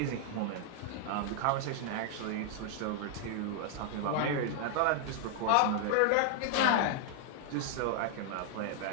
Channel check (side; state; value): both; different; correlation 0.00